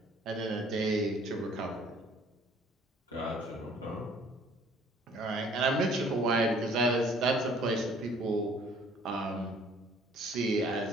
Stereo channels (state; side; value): normal; both; correlation 0.57